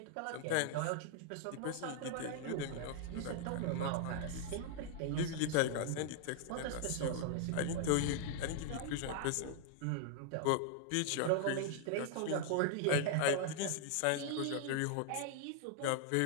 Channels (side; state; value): both; different; correlation 0.00